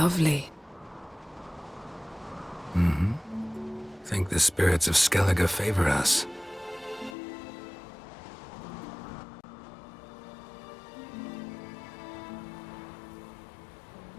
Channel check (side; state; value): right; drops out; at 7.2 s